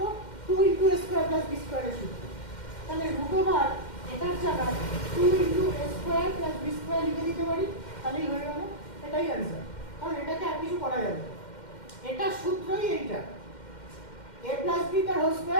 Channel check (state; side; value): late; right; 2.1 ms